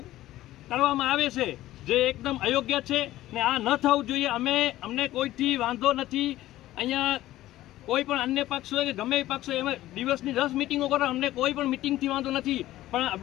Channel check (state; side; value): quieter; right; 15.1 dB